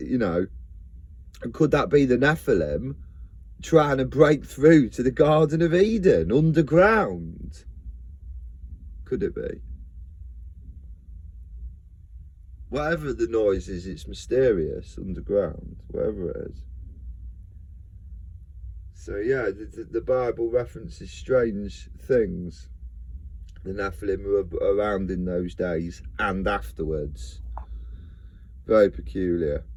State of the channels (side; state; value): both; identical; correlation 1.00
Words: could that be the Nephilim trying to break through to the Garden of Eden underground? Could it be? Whatever the noise is, it's mysterious underground, whatever it is. So yeah, the Bible references strange things. The Nephilim were around in those days and afterwards. Very peculiar.